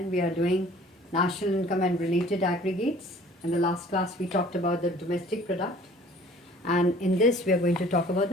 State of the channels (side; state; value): both; normal; correlation 0.51